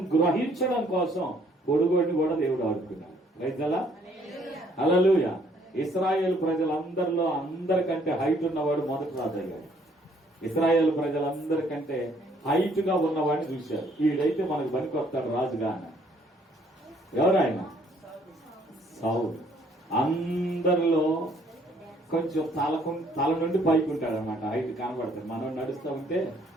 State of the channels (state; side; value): normal; both; correlation 0.64